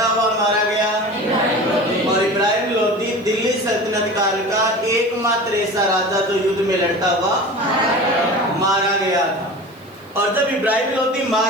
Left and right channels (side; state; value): right; noise; hiss, 30 dB below the sound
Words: हुआ मारा गया। और इब्राहिम लोदी दिल्ली सल्तनत काल का एकमात्र ऐसा राजा जो युद्ध में लड़ता हुआ मारा गया था। और जब इब्राहिम लोदी